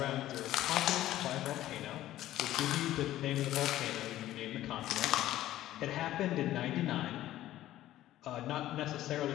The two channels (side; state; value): right; quieter; 14.1 dB